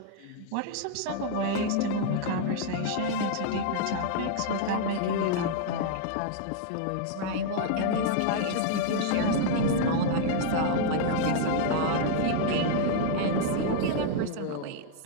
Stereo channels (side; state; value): both; different; correlation -0.01